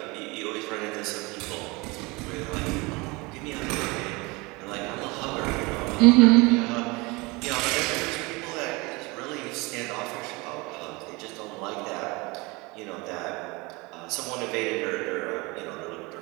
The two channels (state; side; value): quieter; left; 25.2 dB